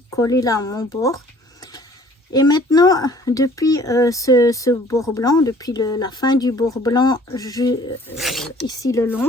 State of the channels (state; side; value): normal; both; correlation 0.54